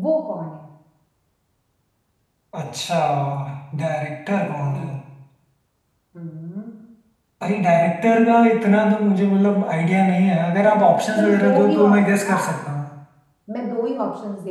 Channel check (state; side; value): identical; both; correlation 1.00